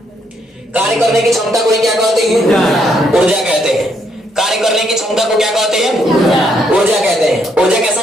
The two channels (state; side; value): normal; both; correlation 0.73